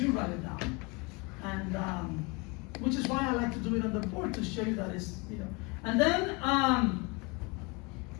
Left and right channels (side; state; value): right; quieter; 28.2 dB